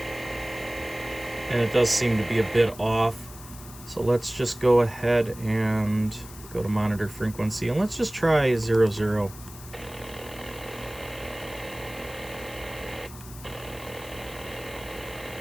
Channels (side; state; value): left; noise; hiss, 17 dB below the sound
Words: And it does seem to be a bit off. So let's just go ahead and go to monitor frequency, and let's just try 00.